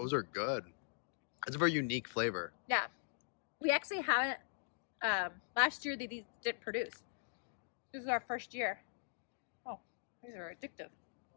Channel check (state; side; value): silent; right; digital silence